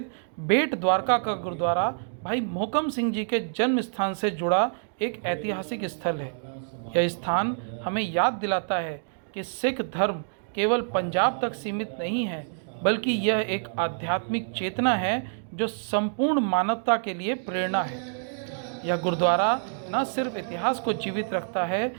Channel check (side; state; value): left; silent; digital silence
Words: बेट द्वारका का गुरुद्वारा भाई मोहकम सिंह जी के जन्म स्थान से जुड़ा एक ऐतिहासिक स्थल है। यह स्थान हमें याद दिलाता है कि सिख धर्म केवल पंजाब तक सीमित नहीं है, बल्कि यह एक आध्यात्मिक चेतना है जो संपूर्ण मानवता के लिए प्रेरणा है। यह गुरुद्वारा न सिर्फ इतिहास को जीवित रखता है,